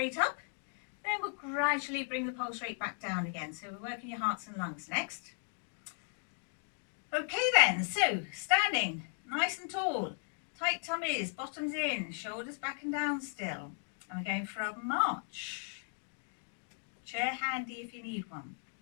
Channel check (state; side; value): silent; right; 54 dB below the other